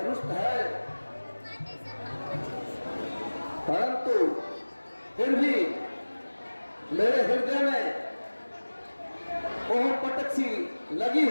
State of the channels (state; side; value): inverted; both; correlation -1.00